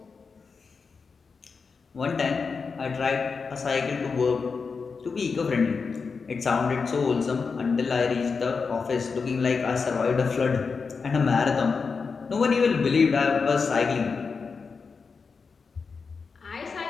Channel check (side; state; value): right; quieter; 5.0 dB